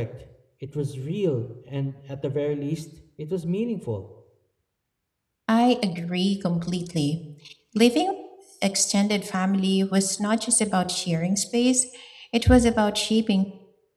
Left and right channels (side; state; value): both; identical; correlation 1.00